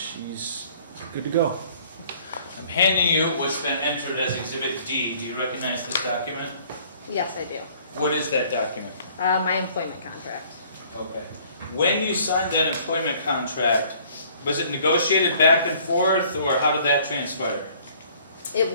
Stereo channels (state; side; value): inverted; both; correlation -0.56